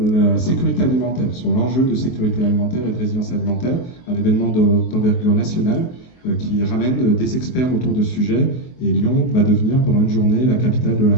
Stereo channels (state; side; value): late; right; 23 ms